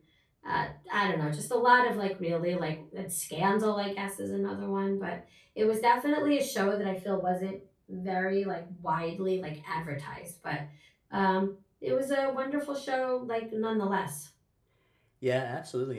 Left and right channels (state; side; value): identical; both; correlation 1.00